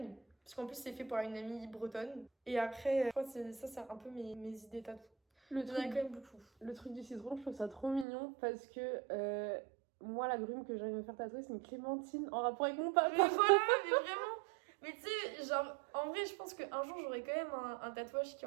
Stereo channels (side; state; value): left; drops out; at 8.1 s